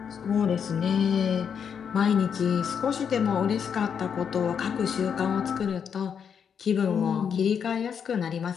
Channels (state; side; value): quieter; right; 7.3 dB